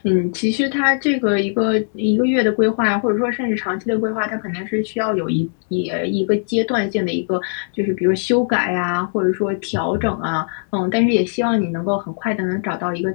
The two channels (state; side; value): silent; right; digital silence